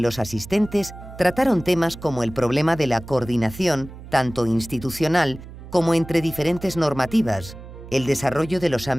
asistentes trataron temas como el problema de la coordinación, tanto institucional como entre diferentes normativas, el desarrollo de los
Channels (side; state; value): right; noise; hum, 15 dB below the sound